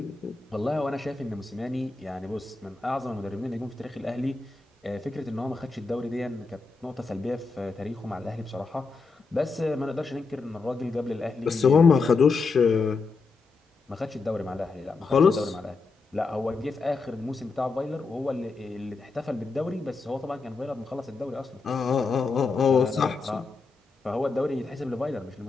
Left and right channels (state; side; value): quieter; right; 4.2 dB